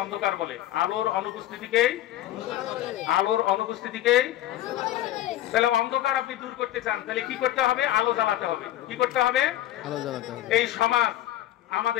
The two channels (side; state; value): right; quieter; 13.8 dB